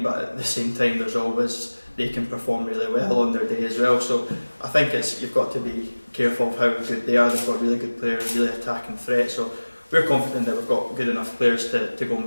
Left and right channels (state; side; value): inverted; both; correlation -1.00